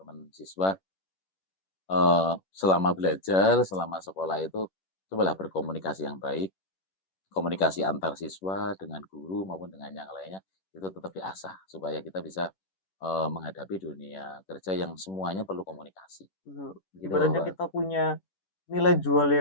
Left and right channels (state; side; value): late; right; 11 ms